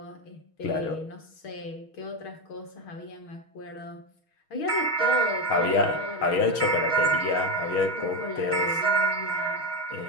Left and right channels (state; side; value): late; right; 6.3 ms